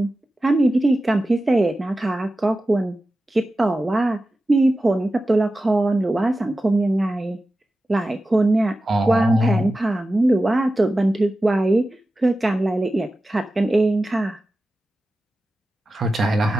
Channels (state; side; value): normal; both; correlation 0.94